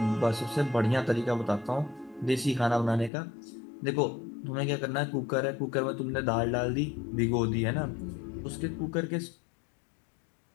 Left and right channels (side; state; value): right; drops out; at 3.1 s